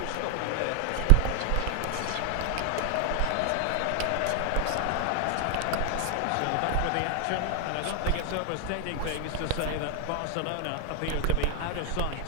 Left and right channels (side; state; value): both; different; correlation 0.00